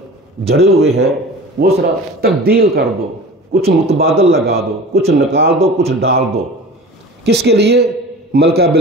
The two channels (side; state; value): both; normal; correlation 0.38